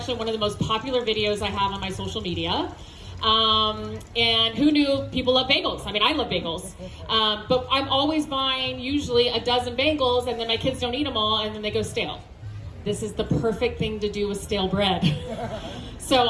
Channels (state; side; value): identical; both; correlation 1.00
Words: one of the most popular videos I have on my social media. And who knew people love bagels? I mean, I love bagels. But I'm always buying usually a dozen bagels, and then my kids don't eat them all, and then they go stale. This is the perfect thing to do with stale bread.